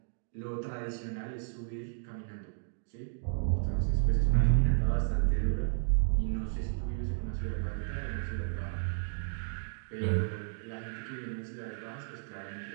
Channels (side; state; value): left; silent; digital silence